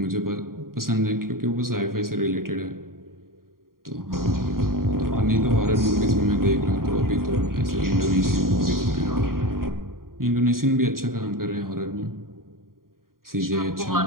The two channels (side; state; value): left; late; 0.92 ms